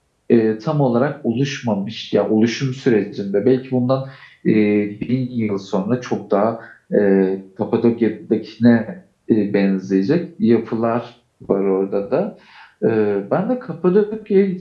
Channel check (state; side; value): identical; both; correlation 1.00